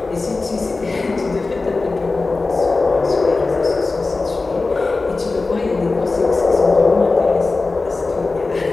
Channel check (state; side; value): quieter; right; 3.7 dB